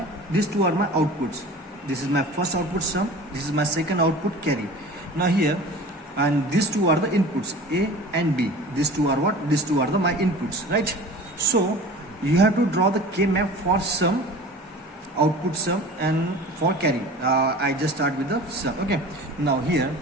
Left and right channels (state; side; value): normal; both; correlation 0.39